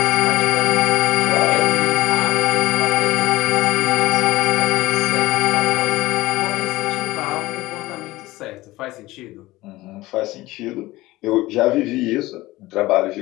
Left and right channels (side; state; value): right; quieter; 18.7 dB